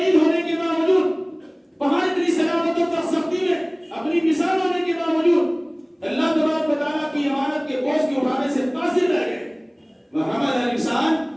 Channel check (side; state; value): both; identical; correlation 1.00